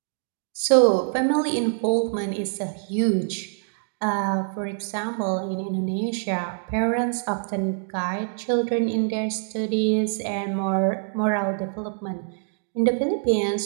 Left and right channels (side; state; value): left; silent; digital silence